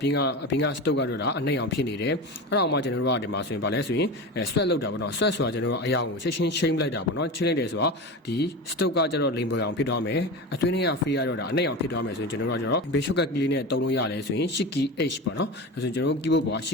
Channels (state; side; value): normal; both; correlation 0.26